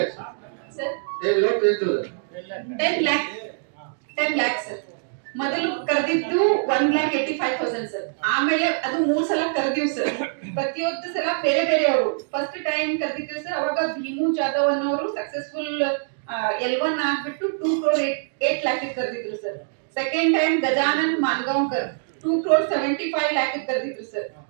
ಸರ್. 10 lakh sir. ಮೊದಲು ಕರೆದಿದ್ದು 1,85,000 ಸರ್. ಆಮೇಲೆ ಅದು 3 ಸಲ ಕರೆದಿವ್ ಸರ್. ಪ್ರತಿಯೊಂದು ಸಲ ಬೇರೆ ಬೇರೆ ಅವರು. ಫಸ್ಟ್ ಟೈಮ್ ಕರೆದಿದ್ದೀವಿ ಸರ್, ಅವಾಗ ಭೀಮು ಜಾಧವ್ ಅನ್ನೋರು ಸಕ್ಸಸ್ಫುಲ್ L1 ಆಗ್ಬಿಟ್ಟು 2,08 lakh ಕರೆದಿದ್ರು sir. Second time Gajanan Mangaonkar 2,75 lakh ಕರೆದಿದ್ರು sir.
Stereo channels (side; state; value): left; silent; digital silence